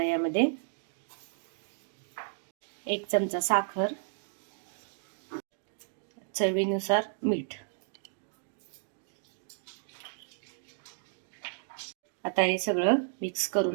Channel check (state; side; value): silent; left; digital silence